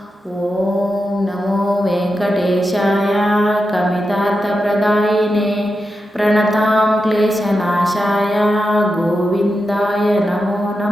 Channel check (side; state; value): both; normal; correlation 0.89